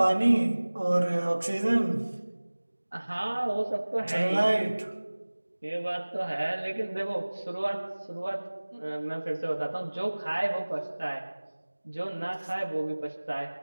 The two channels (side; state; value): both; inverted; correlation -1.00